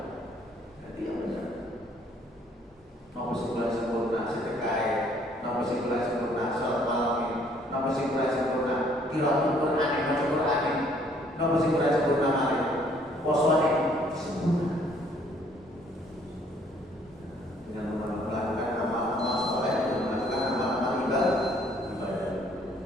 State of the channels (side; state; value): both; normal; correlation 0.62